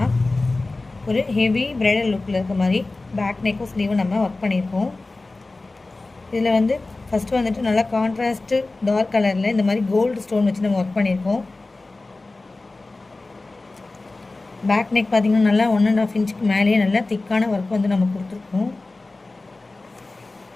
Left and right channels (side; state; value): right; quieter; 3.2 dB